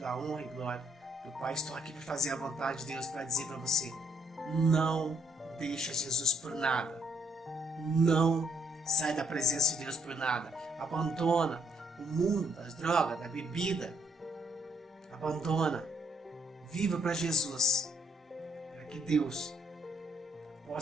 honra e glória do Pai. Estou aqui para fazer a vontade de Deus, para dizer para você: não deixa Jesus por nada. Não sai da presença de Deus por nada. Abandona o mundo das drogas, da bebida. Abandona. Viva para Jesus, para que Deus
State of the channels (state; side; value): normal; both; correlation 0.71